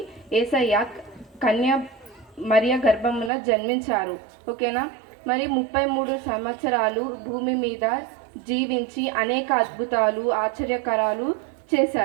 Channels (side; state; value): left; drops out; at 3.3 s